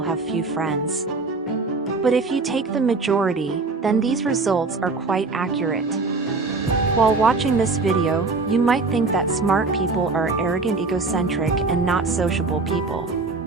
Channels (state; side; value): quieter; left; 3.9 dB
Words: few friends. But if you take the majority, then these results are quite accurate. While watching this video, you might think that smart people are arrogant, egocentric, and not sociable people.